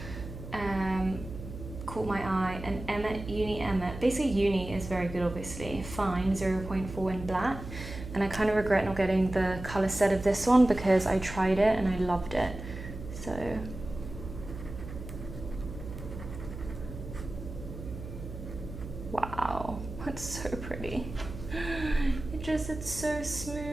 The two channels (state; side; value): noise; right; hum, 10 dB below the sound